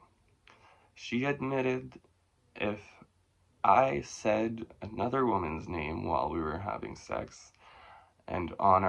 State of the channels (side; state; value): both; identical; correlation 1.00